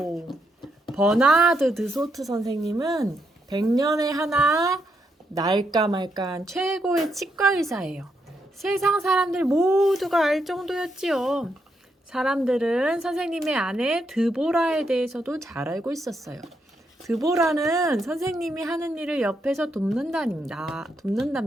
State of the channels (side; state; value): both; normal; correlation 0.79